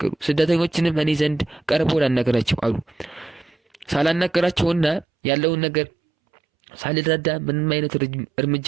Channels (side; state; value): left; drops out; at 5.1 s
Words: ስደተኞችንም እኔ ዘንድ ቀርቦ ላናገራቸው አሉ። ሳላናገራቸውና ያለውን ነገር ሳልረዳ ምንም አይነት እርምጃ